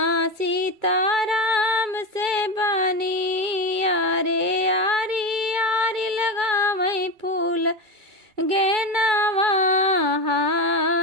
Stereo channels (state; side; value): late; left; 2.3 ms